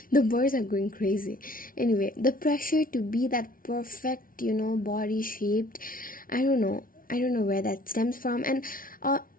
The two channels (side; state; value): right; late; 0.41 ms